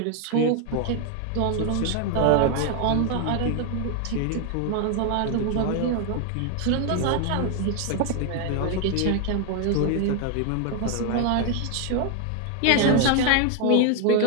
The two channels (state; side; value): different; both; correlation 0.01